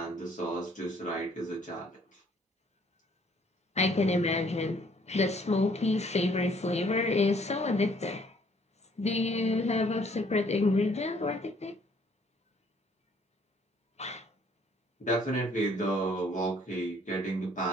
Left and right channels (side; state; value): both; normal; correlation 0.62